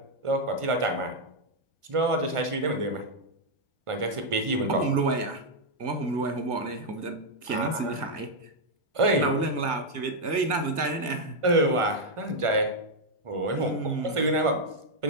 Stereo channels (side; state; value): left; late; 1.8 ms